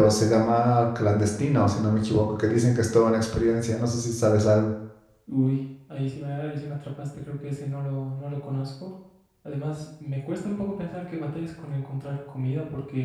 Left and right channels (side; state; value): both; identical; correlation 1.00